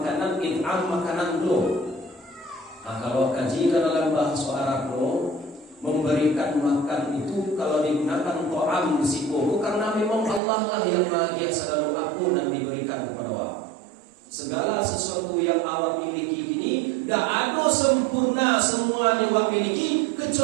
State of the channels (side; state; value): left; drops out; at 10.4 s